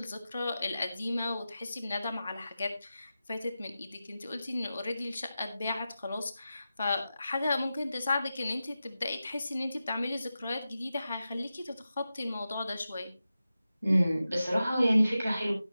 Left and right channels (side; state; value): both; inverted; correlation -0.93